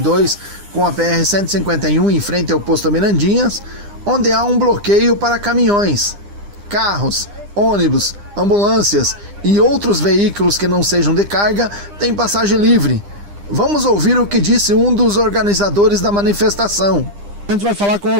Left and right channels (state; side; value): late; left; 9.9 ms